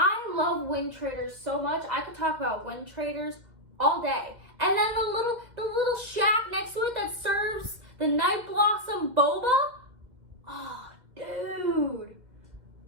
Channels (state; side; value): late; left; 2.1 ms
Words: love Wind Traders so much. I could talk about Wind Traders all day. And then the little shack next to it that serves The Night Blossom Boba? Oh, dude.